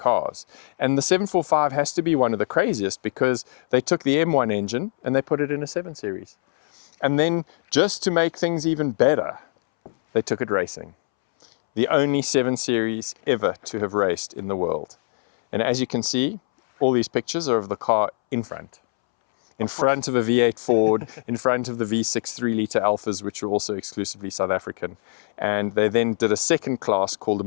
And the 745 has to be one of the craziest because they took the M1 engine and they put it in a 7 Series. And then just to make things even better, they took it racing. The only 7 Series ever to have raced in the world. And as you can see, all these pictures are of the car in front. In front of a V8 Ford, in front of the V6 3-litre Alphas, which were also exclusively South African. And they then did a second class called a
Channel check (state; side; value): silent; right; 63 dB below the other